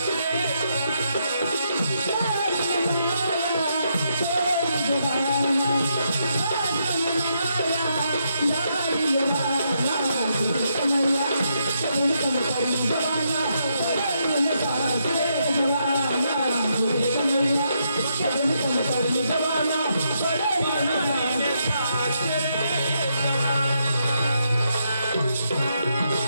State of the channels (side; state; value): both; inverted; correlation -0.79